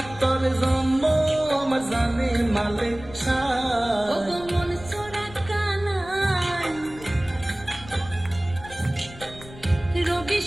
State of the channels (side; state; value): left; noise; rumble, 17 dB below the sound